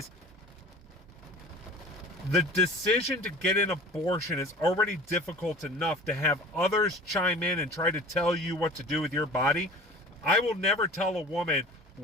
the decision to get an abortion is already difficult enough. To have others chime in and try to tell you what to do with your body. I will never tell a woman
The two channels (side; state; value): both; normal; correlation 0.41